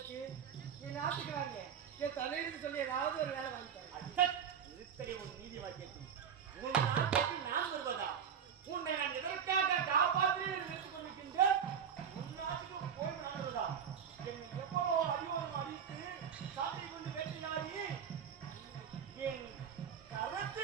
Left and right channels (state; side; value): quieter; left; 7.8 dB